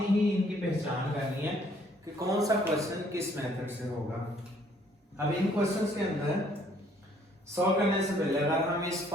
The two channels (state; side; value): normal; both; correlation 0.63